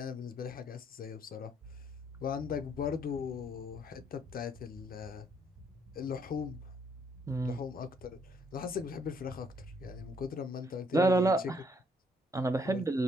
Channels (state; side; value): normal; both; correlation 0.68